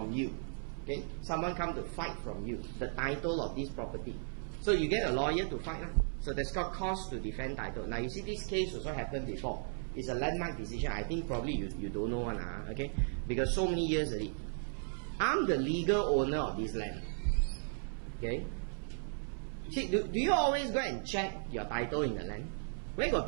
you. Okay, someone come to fight from you the title of this property. So you get a lawyer to fight. So that's called cause to defend title. Now you see this case also happened before. It's a landmark decision. I think probably you don't know one, okay? Because so many years already. I'm the legal owner of this land. Okay. See, do you always go and check your title in the land? Where got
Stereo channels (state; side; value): silent; left; 54 dB below the other